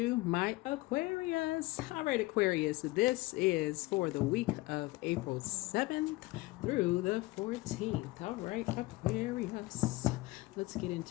my Aquarius. All right, Aquarius, this is for the week of April 7th through the 14th. All right, Aquarius, let's get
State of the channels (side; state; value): right; quieter; 21.2 dB